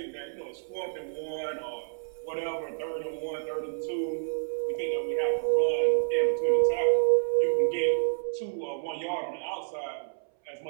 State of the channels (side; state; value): left; silent; 58 dB below the other